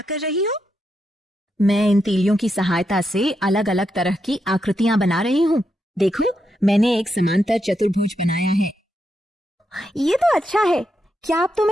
कर रही हो? मैं इन तीलियों की सहायता से अलग अलग तरह की आकृतियां बना रही हूँ। देखो, मैंने एक समांतर चतुर्भुज बनाया है। ये तो अच्छा है। क्या अब तुम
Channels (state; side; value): normal; both; correlation 0.83